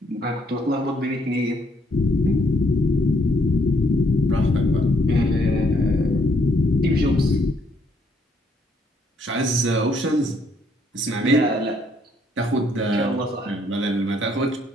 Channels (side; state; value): both; normal; correlation 0.70